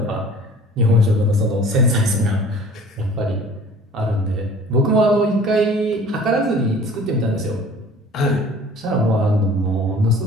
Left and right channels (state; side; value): normal; both; correlation 0.48